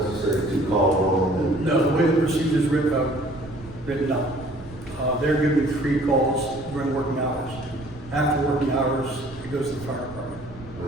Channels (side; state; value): right; noise; rumble, 17 dB below the sound